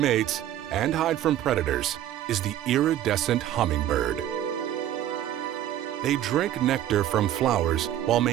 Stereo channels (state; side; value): quieter; left; 12.0 dB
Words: and hide from predators is the iridescent hummingbird. They drink nectar from flowers while